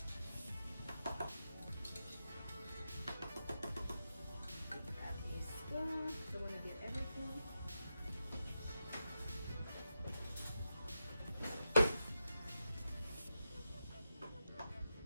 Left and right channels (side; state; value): both; inverted; correlation -0.89